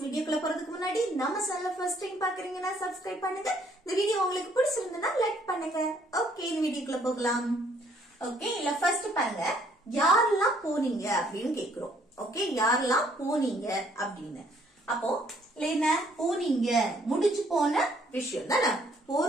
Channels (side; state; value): both; normal; correlation 0.64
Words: வீடியோக்குள்ள போறதுக்கு முன்னாடி நம்ம சேனலை ஃபர்ஸ்ட் டைம் பார்க்கறீங்கன்னா Subscribe பண்ணுங்க. இந்த வீடியோ உங்களுக்கு பிடிச்சிருந்தா லைக் பண்ணுங்க. ஓகே, இந்த வீடியோக்குள்ள போகலாம். ஓகே, இல்ல ஃபர்ஸ்ட் பாருங்க, யாரெல்லாம் போனீங்க அப்படின்னு கேக்குறோம். ஓகே, யாரெல்லாம் போனீங்க அப்படின்னு. அப்போ என்ன போனீங்க முடிஞ்சு போன விஷயம் தானே,